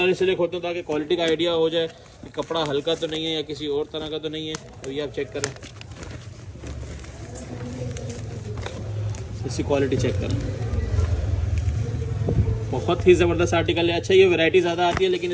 इसलिए खोलते हैं ताकि क्वालिटी का आइडिया हो जाए कि कपड़ा हल्का तो नहीं है या किसी और तरह का तो नहीं है, तो ये आप चेक करें, इसकी क्वालिटी चेक करें। बहुत ही ज़बरदस्त आर्टिकल है। अच्छा, ये वैरायटी ज़्यादा आती है लेकिन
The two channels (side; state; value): both; identical; correlation 1.00